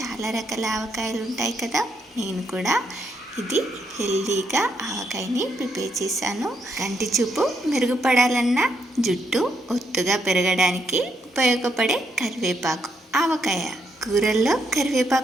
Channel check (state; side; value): normal; both; correlation 0.77